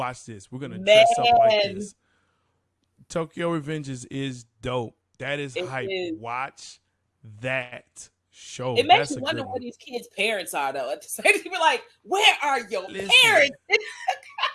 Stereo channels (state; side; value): identical; both; correlation 1.00